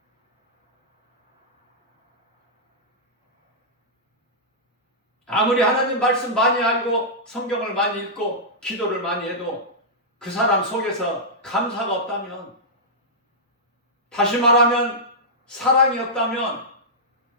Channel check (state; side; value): normal; both; correlation -0.12